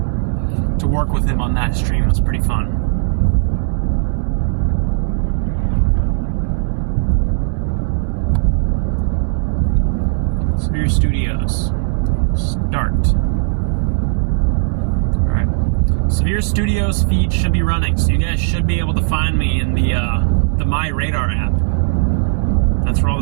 to work with him on that stream was pretty fun. Severe Studios. Start. Alright. Severe Studios feed should be running, so you guys should be able to find me in the My Radar app. That's where all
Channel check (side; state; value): left; silent; 68 dB below the other